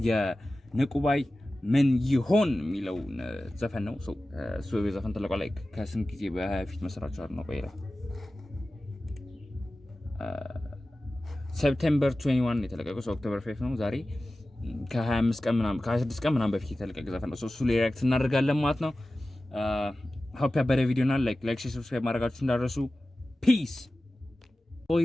የንቁባይ ምን ይሆን የሚለው ዘፈን ነው። ሶ የዘፈን ተለቋል ላይ ከስንት ጊዜ በፊት መስራቹ ነው ቆይራ ሴፕቴምበር 21 የተለቀቀው ኦክቶበር 5 ነው ዛሬ ከ25 ቀን ምናምን ከ26 ቀን ምናምን በፊት የተለቀቀ ዘፈን ነው። እሱ ላይ ሪአክት እናደርጋለን ማለት ነው። ሆፕ ያበረ ቪዲዮ እና ላይክ ሰብስክራይብ ማድረጋችሁ እንዳትረሱ። ፒስ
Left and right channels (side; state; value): both; normal; correlation 0.96